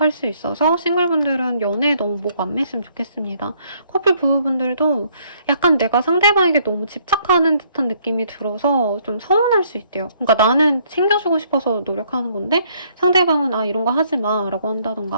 수 있어서 싱글분들은 연애에 너무 목 안 맸으면 좋겠습니다. 커플 부부분들도 약간 내가 상대방에게 너무 집착하는 듯한 느낌이 들어서 좀 서운할 수 있대요. 그러니까 나는 챙겨주고 싶어서 노력하는 건데 상대방은 이런 거 하지 마 라고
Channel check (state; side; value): inverted; both; correlation -0.66